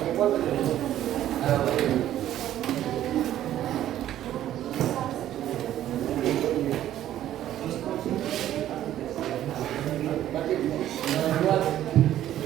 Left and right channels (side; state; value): left; quieter; 12.3 dB